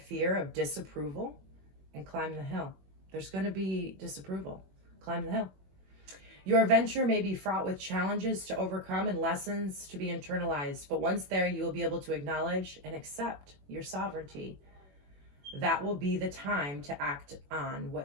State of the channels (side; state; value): left; late; 21 ms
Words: of disapproval and climb the hill. There's going to be disapproval. Climb the hill. Your venture may be fraught with challenges to overcome and lessons to be internalized, but once there, you will be able to acknowledge and accept your sovereignty. That will be the time to act on